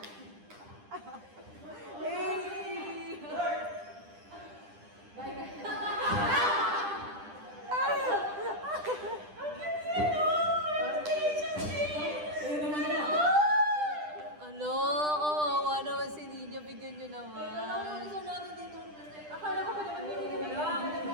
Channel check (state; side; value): late; left; 10 ms